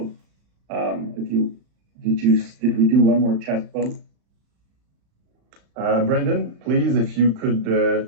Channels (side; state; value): left; late; 35 ms